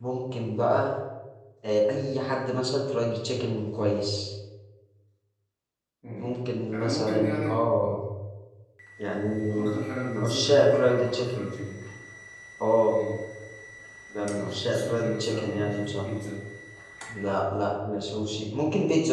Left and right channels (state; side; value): identical; both; correlation 1.00